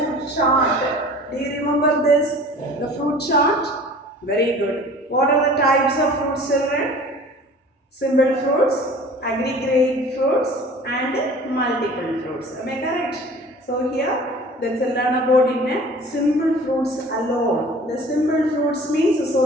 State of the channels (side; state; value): both; normal; correlation 0.45